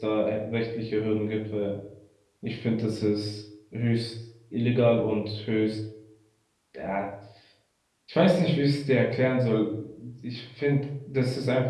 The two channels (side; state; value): both; identical; correlation 1.00